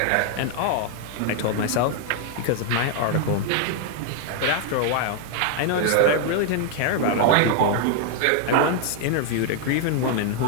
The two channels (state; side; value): different; both; correlation 0.00